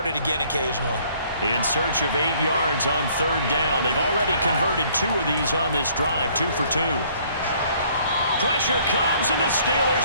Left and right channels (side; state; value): both; inverted; correlation -0.60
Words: again occasionally. In search of 8 yards on 3rd down. They've already converted 2 of these on this drive, 2 for 2. Pressure comes, and the